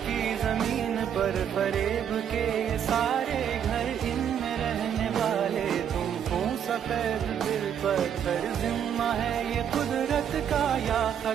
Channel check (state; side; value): quieter; left; 8.7 dB